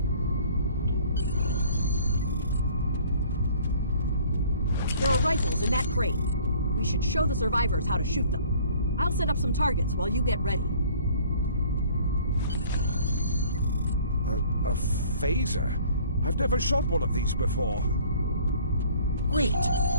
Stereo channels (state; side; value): inverted; both; correlation -0.53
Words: There are rifles in that crate. We should show the survivors how to shoot them. I'll set up some targets while you get ready. A phaser? I've never shot one of these before. Wait,